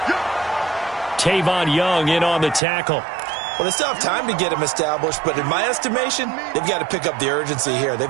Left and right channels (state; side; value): drops out; left; at 2.6 s